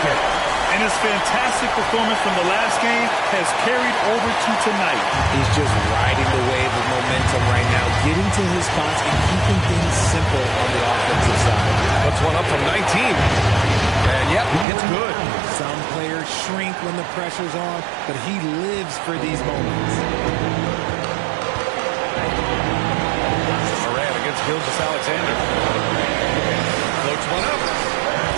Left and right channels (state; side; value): drops out; left; at 14.7 s